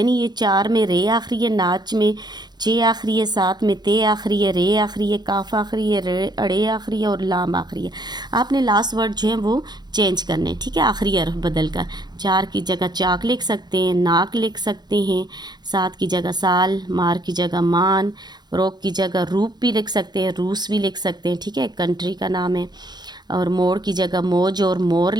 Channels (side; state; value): left; late; 0.20 ms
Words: ये 4 में रे आखिरी है, नाच में चे आखिरी है, 7 में ते आखिरी है, रे आखिरी है, काफ आखिरी है, रे अड़े आखिरी है और लाम आखिरी है। आपने लास्ट वर्ड जो है वो चेंज करने हैं। ठीक है, आखिरी हरफ बदल कर 4 की जगह चाक लिख सकते हैं, नाक लिख सकते हैं, 7 की जगह साल, मार की जगह मान, रोक की जगह रूप भी लिख सकते हैं, रूस भी लिख सकते हैं। ठीक है, कंट्री का नाम है। और मोड़ की जगह मौज और मोर